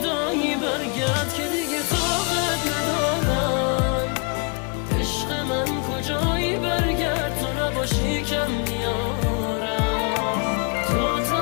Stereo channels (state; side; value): quieter; right; 34.4 dB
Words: برگرد که دیگه طاقت ندارم. عشق من کجایی برگرد تو نباشی کم میارم. تو